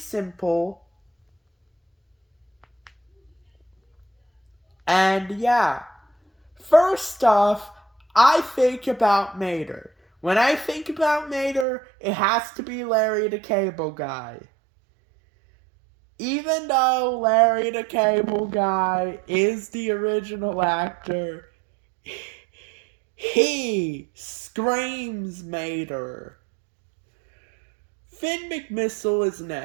And yeah, first off, I think about Mater. When I think about Mater, it has to be Larry the Cable Guy. Even though Larry the Cable Guy is the original actor, he screams Mater. Finn McMissile is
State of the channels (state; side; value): drops out; left; at 11.7 s